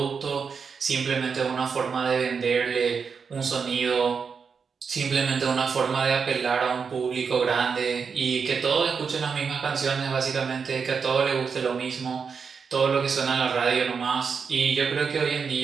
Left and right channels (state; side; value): quieter; left; 5.9 dB